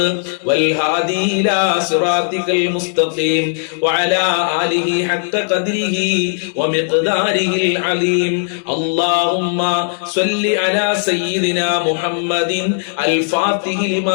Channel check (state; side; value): silent; right; digital silence